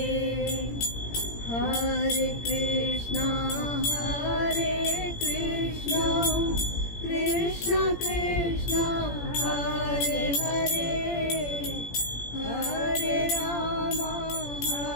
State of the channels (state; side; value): late; right; 17 ms